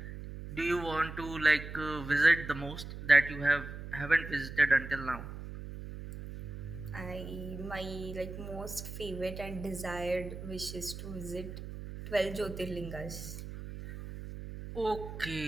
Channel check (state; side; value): noise; right; hum, 10 dB below the sound